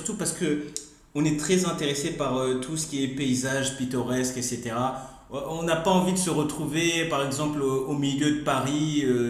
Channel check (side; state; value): both; identical; correlation 1.00